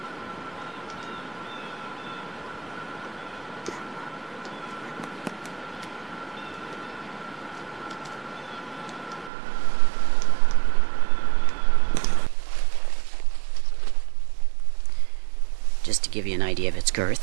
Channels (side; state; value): left; drops out; at 9.3 s